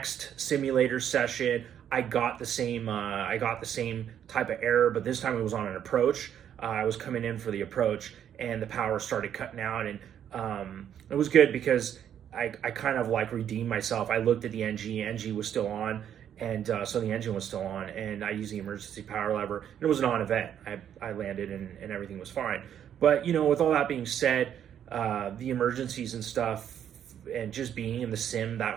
simulator session, I got the same type of error, but this time it was on an approach. I was coming in for the approach, and the power started cutting out, and it was good because I kind of like redeemed myself. I looked at the NG was still on, and so the engine was still on, and I used the emergency power lever, and it was a non-event. I landed, and everything was fine. But with all that being said, the emergencies and stuff, and just being in the sim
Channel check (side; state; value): left; quieter; 9.6 dB